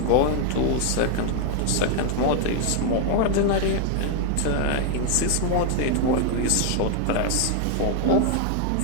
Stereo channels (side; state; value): both; different; correlation 0.00